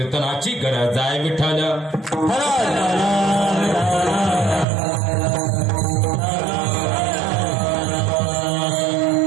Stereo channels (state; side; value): drops out; left; at 4.7 s